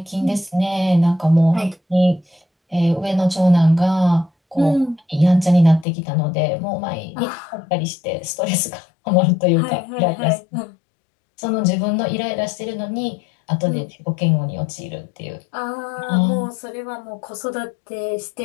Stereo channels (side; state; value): right; drops out; at 5.9 s